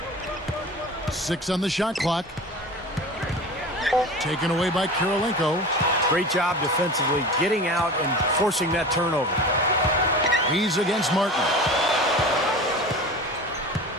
6 on the shot clock. Taken away by Kirilenko. Great job defensively, getting out and forcing that turnover. He's against Martin.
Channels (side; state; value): both; normal; correlation 0.34